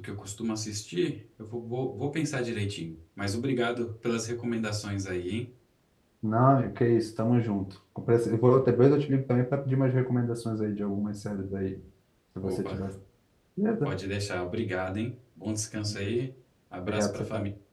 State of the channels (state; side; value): identical; both; correlation 1.00